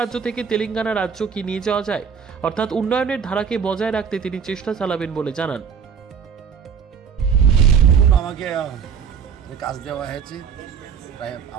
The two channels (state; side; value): quieter; left; 6.9 dB